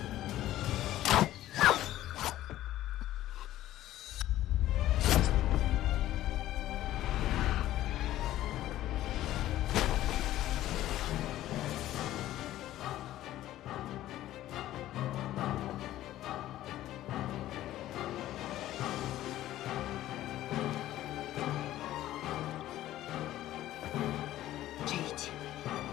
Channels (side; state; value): right; quieter; 14.1 dB